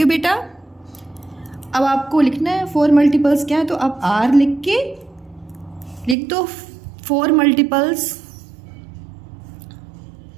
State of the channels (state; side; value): drops out; left; at 6.2 s